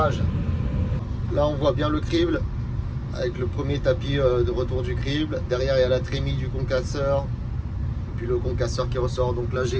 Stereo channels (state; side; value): identical; both; correlation 1.00